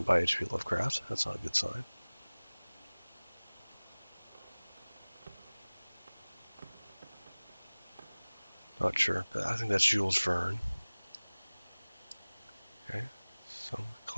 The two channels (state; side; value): inverted; both; correlation -1.00